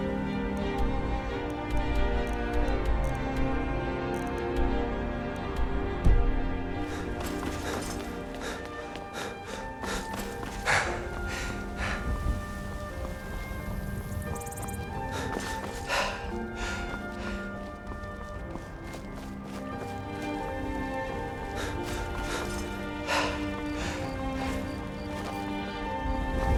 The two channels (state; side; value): identical; both; correlation 1.00